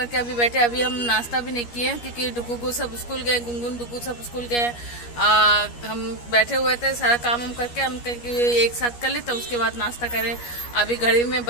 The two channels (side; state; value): right; late; 13 ms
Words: अभी बैठे। अभी हम नाश्ता भी नहीं किए क्योंकि डुगू सब स्कूल गए, गुनगुन डुगू सब स्कूल गए। हम बैठे हुए थे, सारा काम हम करके हम एक साथ कर ले तो उसके बाद नाश्ता करें। अभी घड़ी में